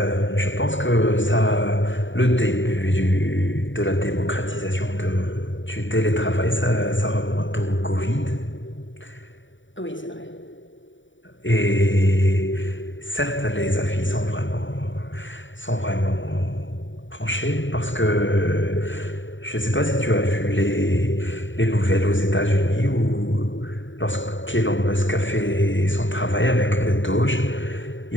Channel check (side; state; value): right; late; 0.55 ms